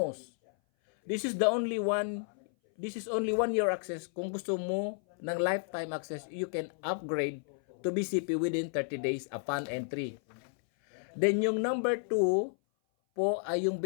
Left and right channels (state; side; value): silent; right; 56 dB below the other